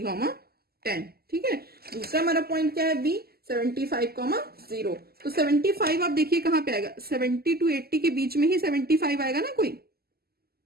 10, ठीक है। दूसरा हमारा पॉइंट क्या है बी 75, 0। तो 75 आप देखिए कहाँ पे आएगा, 70 to 80 के बीच में ही 75 आएगा ना कोई,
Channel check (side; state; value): left; late; 0.45 ms